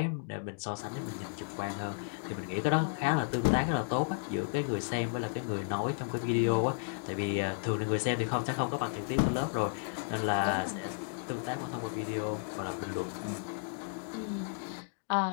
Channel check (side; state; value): right; silent; digital silence